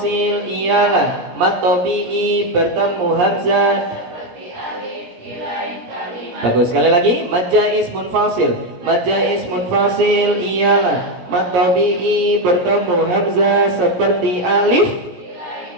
ialah mad tabi'i bertemu hamzah seperti alif di lain kalimat. Bagus, sekali lagi. Mad jaiz munfasil. Mad jaiz munfasil ialah mad tabi'i bertemu hamzah seperti alif di lain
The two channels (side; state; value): left; late; 17 ms